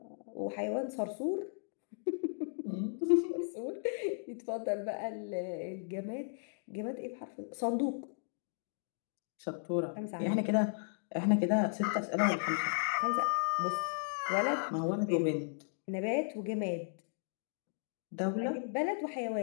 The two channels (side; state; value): right; silent; digital silence